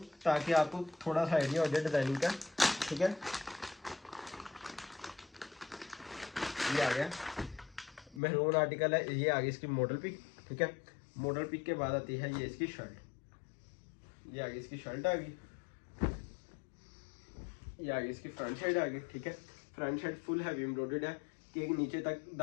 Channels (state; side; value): drops out; right; at 8.2 s